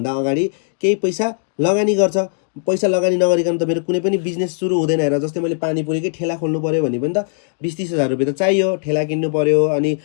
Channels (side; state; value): right; silent; digital silence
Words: अगाडि केही पैसा लगानी गर्छ। पैसा लगानी नगरिकन त मेरो कुनै पनि बिजनेस सुरु हुँदैन। हेर जस्तै मैले पानीपुरीकै ठेला खोल्नु पऱ्यो भने पनि त 20-30 हजार रुपियाँ त चाहियो, ठेला किन्नु पऱ्यो अनि